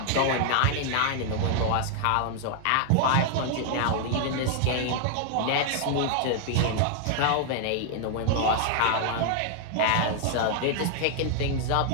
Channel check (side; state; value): both; different; correlation 0.00